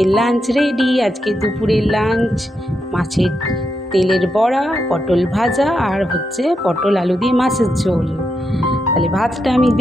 লাঞ্চ রেডি। আজকে দুপুরের লাঞ্চ মাছের তেলের বড়া, পটল ভাজা আর হচ্ছে পটল আলু দিয়ে মাছের ঝোল। তাহলে ভাতটা আমি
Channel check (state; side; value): normal; both; correlation 0.84